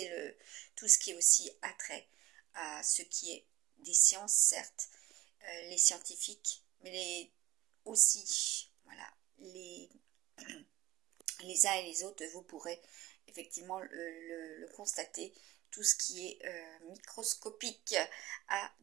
tout ce qui est aussi attrait à ce qui est des sciences, certes, les scientifiques, mais aussi, voilà, les uns et les autres, vous pourrez effectivement le constater, tout ce qui est microscopique a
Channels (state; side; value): quieter; left; 16.3 dB